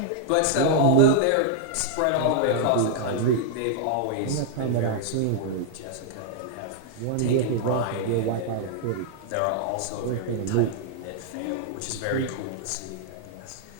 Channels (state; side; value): different; both; correlation -0.01